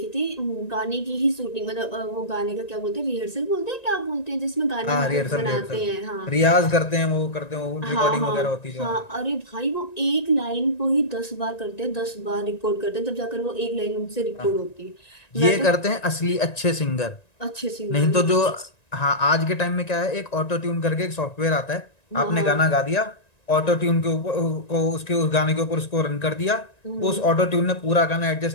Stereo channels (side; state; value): right; late; 1.9 ms